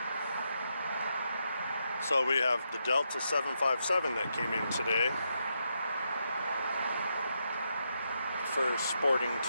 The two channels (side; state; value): both; inverted; correlation -0.82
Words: So we have the Delta 757 that came in today. For sporting